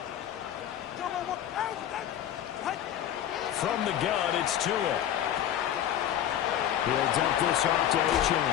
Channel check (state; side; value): quieter; right; 10.8 dB